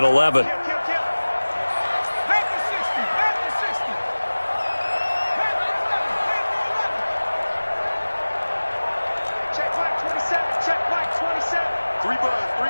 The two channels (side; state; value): both; inverted; correlation -1.00